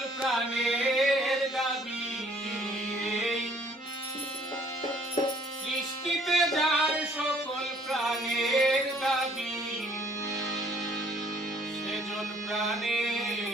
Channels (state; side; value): normal; both; correlation 0.60